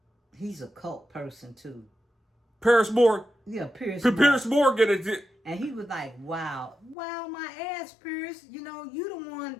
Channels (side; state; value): right; drops out; at 7.0 s